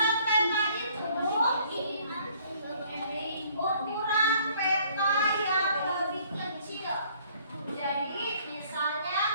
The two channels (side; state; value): both; inverted; correlation -0.60